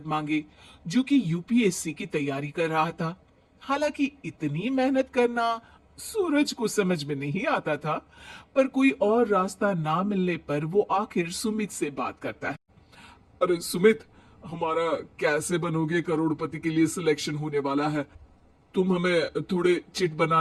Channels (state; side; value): identical; both; correlation 1.00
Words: मांगे, जो कि यूपीएससी की तैयारी कर रहा था। हालांकि इतनी मेहनत करना सूरज को समझ में नहीं आता था, पर कोई और रास्ता ना मिलने पर वो आखिर सुमित से बात करता है। अरे सुमित, हमारा कैसे बनोगे करोड़पति के लिए सिलेक्शन होने वाला है। तुम हमें थोड़े चिट